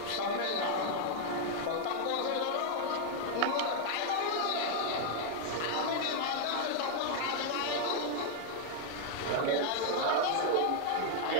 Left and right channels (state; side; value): different; both; correlation 0.00